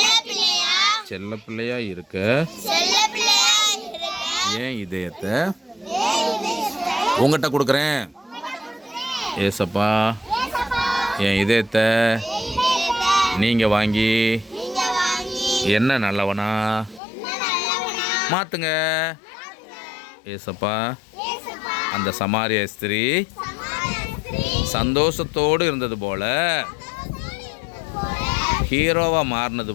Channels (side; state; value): right; drops out; at 17.0 s